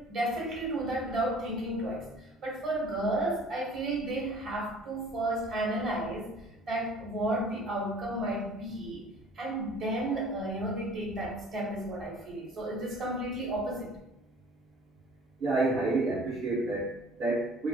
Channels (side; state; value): both; normal; correlation 0.49